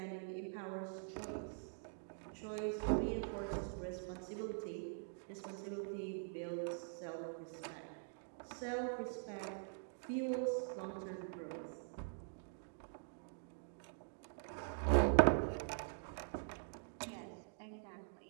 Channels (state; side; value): silent; left; digital silence